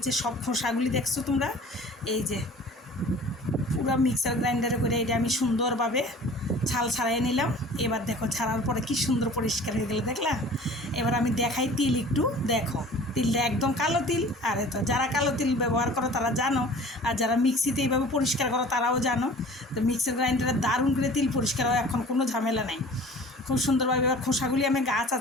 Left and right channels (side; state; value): both; normal; correlation 0.45